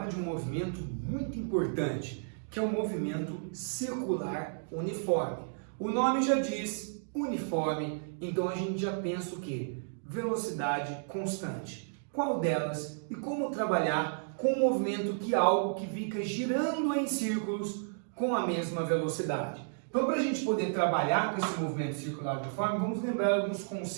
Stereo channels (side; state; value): left; silent; digital silence